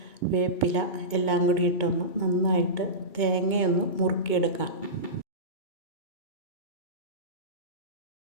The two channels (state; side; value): late; right; 2.2 ms